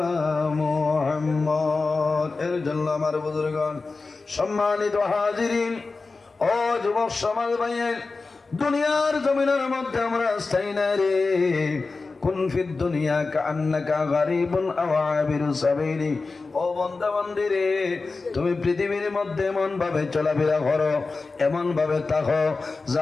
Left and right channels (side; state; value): right; quieter; 3.9 dB